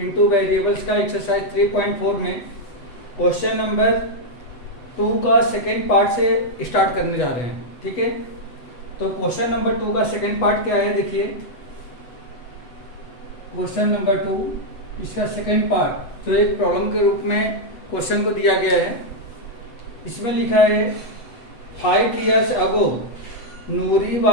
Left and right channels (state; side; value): late; right; 7.8 ms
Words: variables का एक्सरसाइज 3.4 में क्वेश्चन नंबर 2 का सेकेंड पार्ट से स्टार्ट करने जा रहे हैं। ठीक है, तो क्वेश्चन नंबर 2 का सेकेंड पार्ट क्या है, देखिए क्वेश्चन नंबर 2 इसका सेकेंड पार्ट जो एक प्रॉब्लम के रूप में क्वेश्चन को दिया गया है। इसमें लिखा है 5 years ago Noori